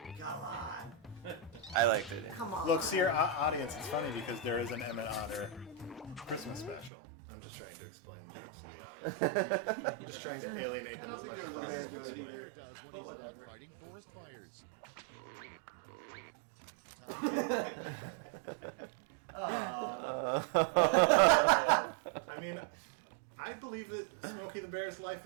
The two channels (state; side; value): drops out; left; at 6.9 s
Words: come on. I liked it. Come on. Look, see our audience. It's funny because there is an Emmett Otter Christmas special. I'm just trying to explain things. I'm just trying to alienate them as much as possible. to Smokey the explain. Bear does when he's not fighting forest fires. I mean, I believe that Smokey the Bear's life